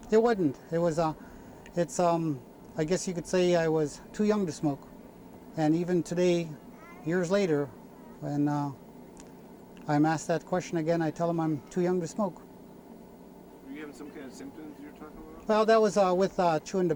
It wasn't. It was, I guess you could say I was too young to smoke. And even today, years later, when I'm asked that question again, I tell them I'm too young to smoke. Were you having some kind of symptoms you're talking about? Well, that was with chewing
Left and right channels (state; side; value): identical; both; correlation 1.00